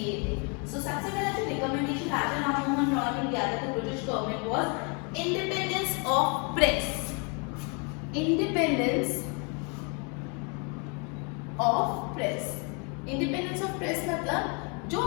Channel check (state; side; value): quieter; right; 34.8 dB